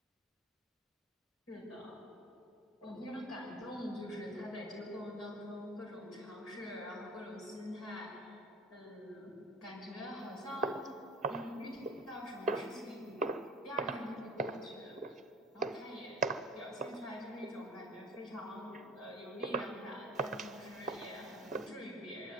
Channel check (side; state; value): both; normal; correlation 0.44